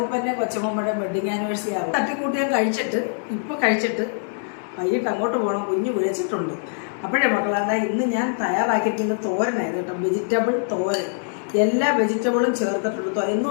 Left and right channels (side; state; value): right; silent; digital silence